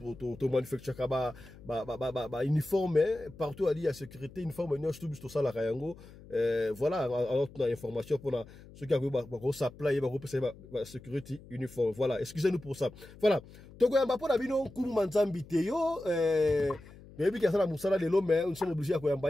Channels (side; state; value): left; noise; hum, 20 dB below the sound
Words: manufacturons uniforme, partout il y a sécurité, uniforme, nous sommes tout ça la Kayango. Voilà, alors on a information pour ceux qui ont supply, la sécurité uniforme. Voilà, excusez-nous pour ça. Voilà, Tokoyamba pour la bino Kumu Manzambi Teyo. Mais puis, nous sommes obligés à